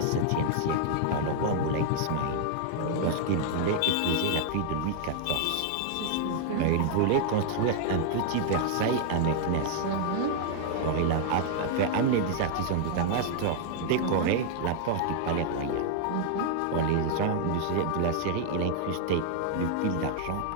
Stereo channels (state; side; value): different; both; correlation 0.00